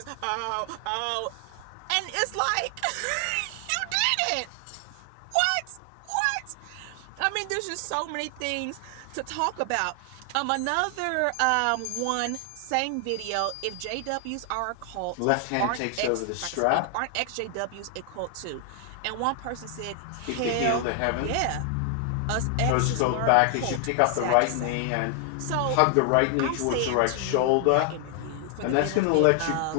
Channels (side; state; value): both; different; correlation 0.00